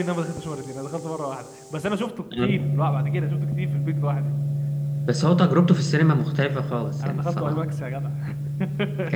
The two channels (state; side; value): identical; both; correlation 1.00